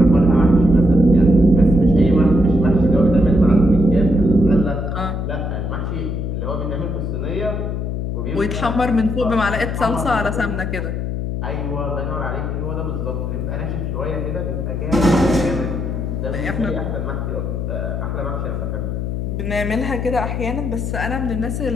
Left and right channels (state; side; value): noise; left; hum, 2 dB below the sound